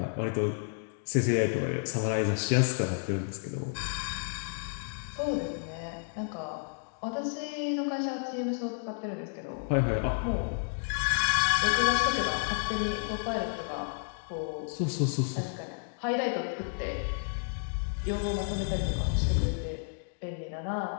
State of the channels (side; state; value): right; silent; digital silence